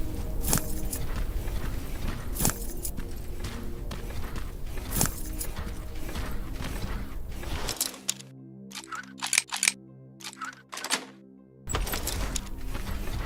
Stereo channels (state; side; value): identical; both; correlation 1.00